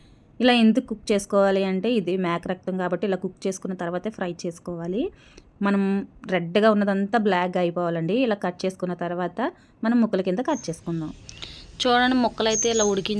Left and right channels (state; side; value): identical; both; correlation 1.00